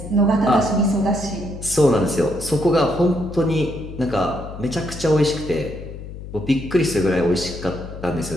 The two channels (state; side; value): noise; left; hum, 11 dB below the sound